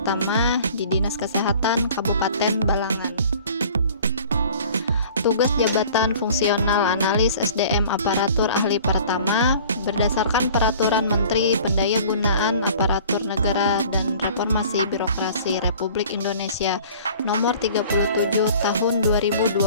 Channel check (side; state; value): both; inverted; correlation -0.47